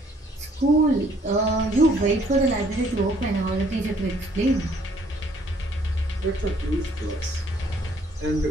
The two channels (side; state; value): both; normal; correlation 0.62